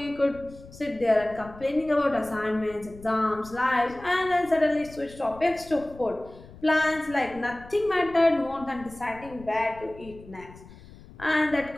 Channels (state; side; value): noise; left; rumble, 19 dB below the sound